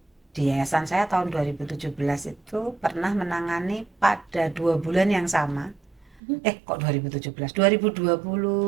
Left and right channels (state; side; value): drops out; left; at 6.2 s